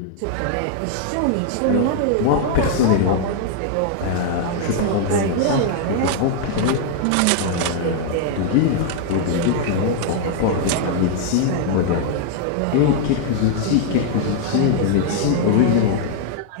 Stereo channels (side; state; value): both; different; correlation 0.00